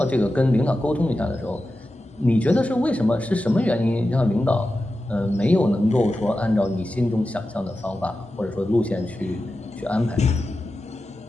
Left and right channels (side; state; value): both; normal; correlation 0.92